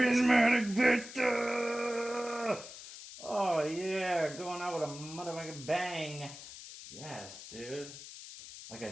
Vista! Oh yeah, going out with a motherfucking bang. Yes, dude. Like I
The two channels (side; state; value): left; noise; hiss, 13 dB below the sound